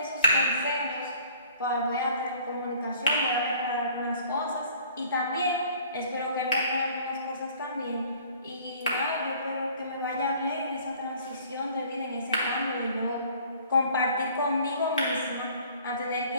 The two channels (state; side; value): inverted; both; correlation -0.53